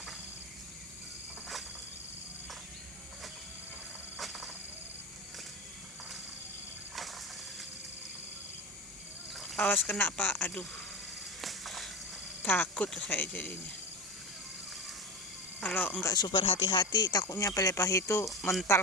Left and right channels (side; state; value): both; normal; correlation 0.24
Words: Awas kena Pak, aduh, takut saya jadinya. Kalau enggak super hati-hati, takutnya pelepah itu mental